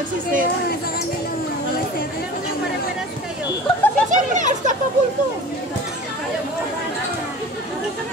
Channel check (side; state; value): both; normal; correlation 0.39